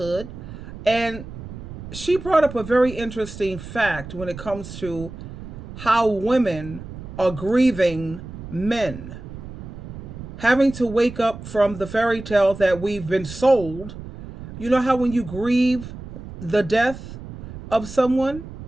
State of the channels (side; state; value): right; noise; rumble, 12 dB below the sound